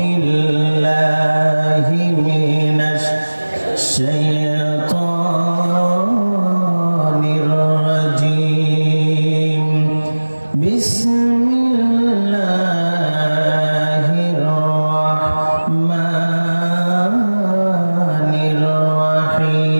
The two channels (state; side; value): inverted; both; correlation -1.00